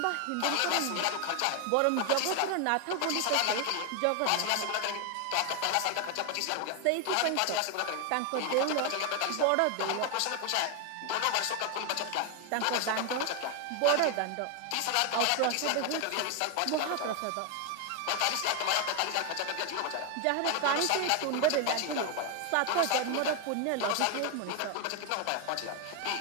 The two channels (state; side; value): different; both; correlation 0.01